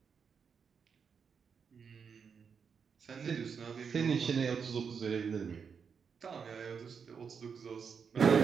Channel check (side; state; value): left; quieter; 6.3 dB